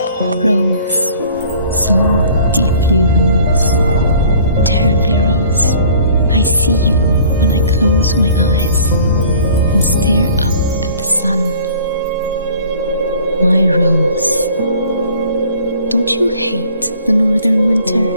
Rose, so deeply rose, terribly rose, I see you when I close my eyes and stare up at the sun. My rose, don't you hate the northern winter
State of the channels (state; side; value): inverted; both; correlation -0.52